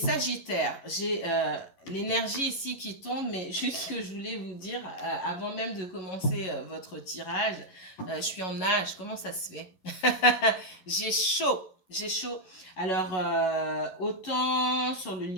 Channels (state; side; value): late; right; 11 ms